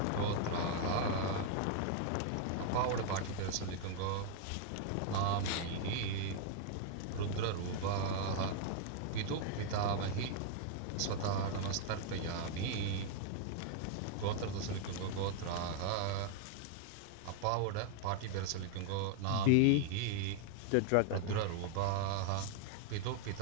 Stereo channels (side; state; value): both; different; correlation 0.00